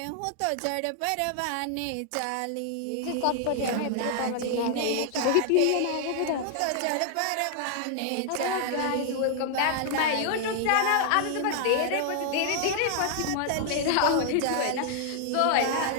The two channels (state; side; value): different; both; correlation 0.00